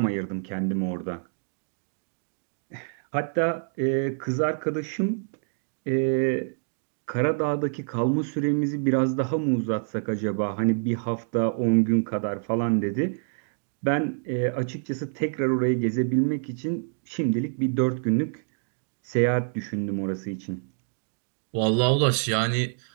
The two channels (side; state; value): left; silent; digital silence